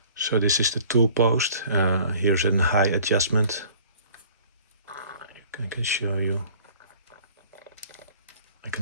So this is the tool post. Here's a high adjustment. I can show you. I can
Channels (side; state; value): both; inverted; correlation -0.50